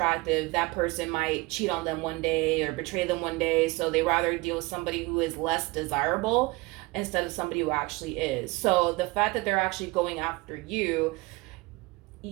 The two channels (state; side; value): quieter; left; 23.5 dB